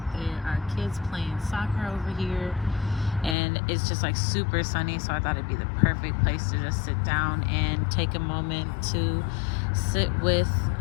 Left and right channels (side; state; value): right; drops out; at 3.4 s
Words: There are kids playing soccer over here, and it's just like super sunny, so I thought it'd be the perfect place to just sit down and take a moment to sit with